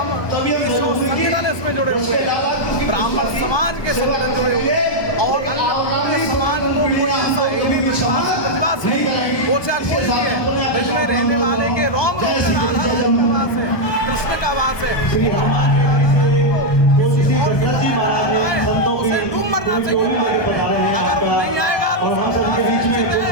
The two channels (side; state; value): right; late; 1.2 ms